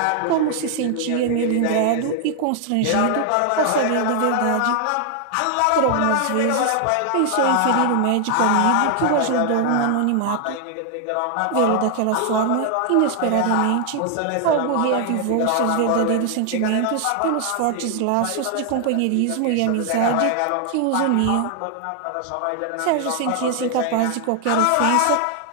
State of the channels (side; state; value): both; different; correlation 0.00